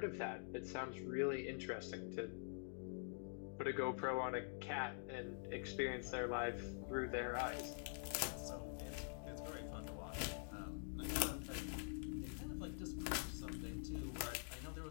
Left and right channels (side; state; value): right; silent; digital silence